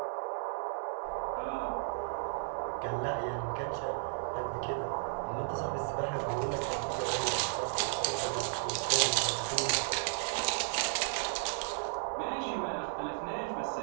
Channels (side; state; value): left; silent; 55 dB below the other